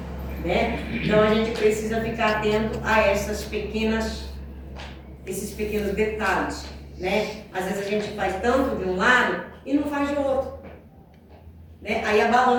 Né? Então a gente precisa ficar atento a esses pequenos detalhes, né? Às vezes a gente faz tanto de um lado e não faz de outro, né? Aí a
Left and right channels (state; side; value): identical; both; correlation 1.00